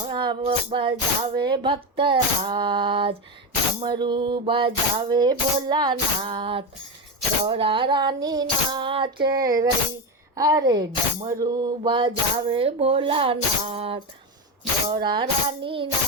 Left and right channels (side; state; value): both; normal; correlation 0.16